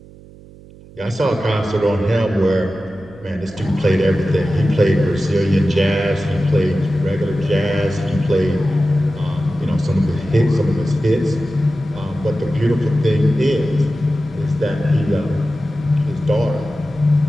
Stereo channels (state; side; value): noise; right; hum, 21 dB below the sound